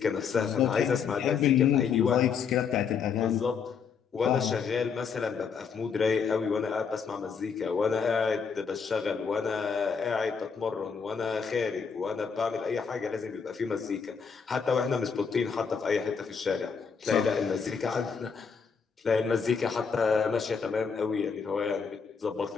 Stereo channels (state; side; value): quieter; right; 6.1 dB